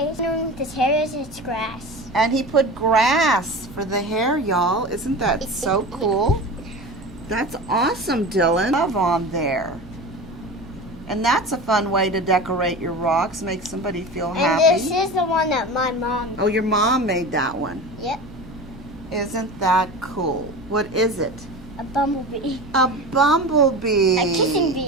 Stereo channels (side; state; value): both; normal; correlation 0.31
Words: This hair is its grass. And he put grass for the hair, y'all. Isn't that so cool? That's awesome, Dylan. Love on there. And that's a fun way to decorate your rocks, make somebody feel happy. And this is the one that my mom made. Oh, your mom made that one. Yep. Isn't that cool? What is it? A bumblebee. A bumblebee. A kissing